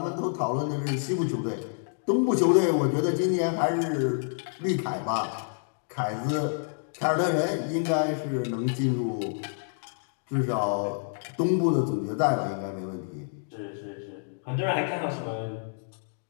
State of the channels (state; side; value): silent; right; digital silence